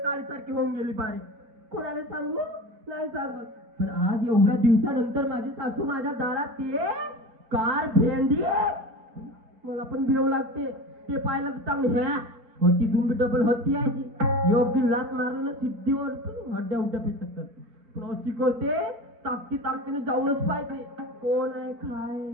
काळीसारखी होऊन गेली बारी. कोणाला सांगू नाही सांगत. पण आज एवढ्या दिवसानंतर माझी सासू माझ्या दारात ये कार भेंडी. मला पण भेव लागते ते पाहिलं तर चांगली ह्या होती दुंबी डबल होती आहे ती. योग्य लात मारलं ना सिद्धीवर हड्ड्या उड्या पेटतात. प्रॉसी करते ताकती ताकतीने जाऊनच पाहिजे. कोण आहे काय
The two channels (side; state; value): left; late; 4.5 ms